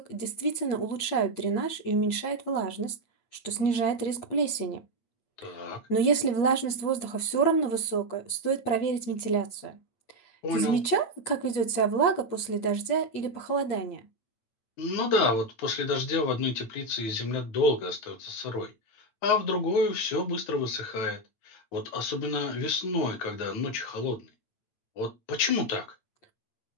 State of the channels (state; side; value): late; right; 8.9 ms